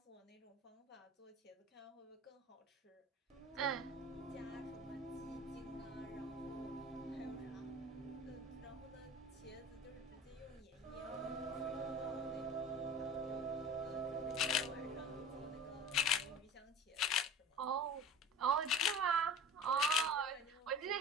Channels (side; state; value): both; normal; correlation 0.38